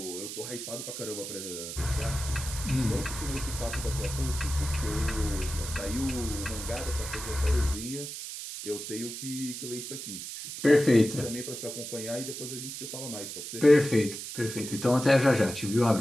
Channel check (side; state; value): right; noise; hiss, 8 dB below the sound